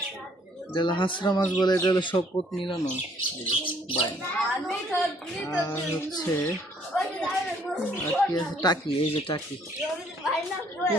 এটা হলো হাঁসরা মাছ বলে, এটা হলো শপথ মিলানো বাইন। আর হচ্ছে আর কি আছে, টাকি, এই যে টাকি। ও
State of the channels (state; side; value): normal; both; correlation 0.63